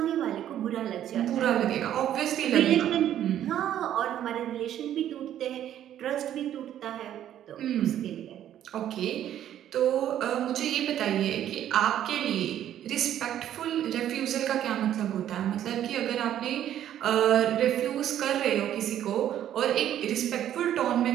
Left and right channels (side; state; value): left; quieter; 11.2 dB